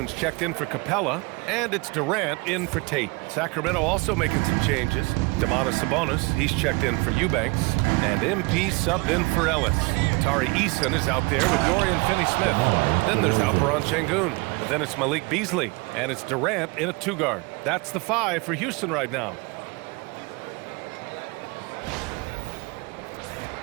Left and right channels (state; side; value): quieter; left; 26.8 dB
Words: checked in for Capella, and it's Durant in for Tate. Sacramento also making some changes. Domantas Sabonis, he's checked in for Eubanks, and MP subbed in for Ellis. Tari Eason is out there with Dorian Finney-Smith. Then there's Alperen Şengün. Then it's Malik Beasley, and it's Durant in a 2-guard. That's the 5 for Houston right now.